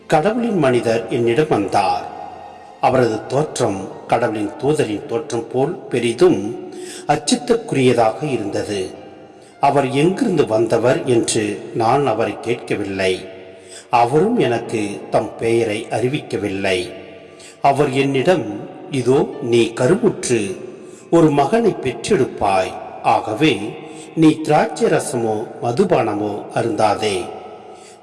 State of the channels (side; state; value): both; identical; correlation 1.00